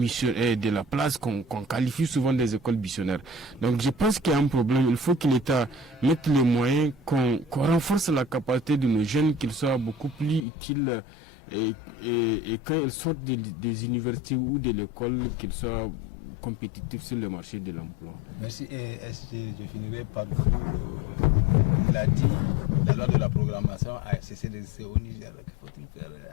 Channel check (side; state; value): right; drops out; at 10.5 s